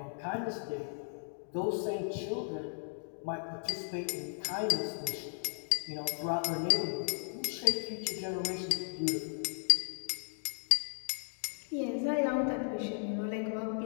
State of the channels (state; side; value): silent; right; 54 dB below the other